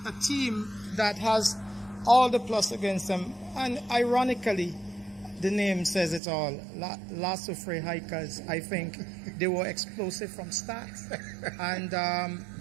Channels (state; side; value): drops out; left; at 6.2 s